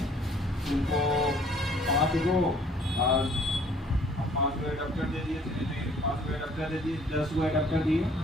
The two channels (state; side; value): normal; both; correlation 0.58